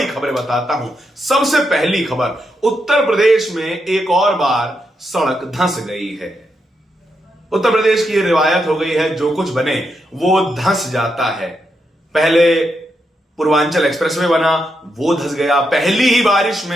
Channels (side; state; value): both; normal; correlation 0.83